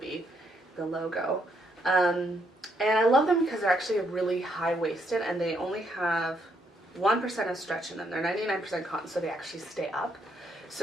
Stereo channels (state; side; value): normal; both; correlation 0.74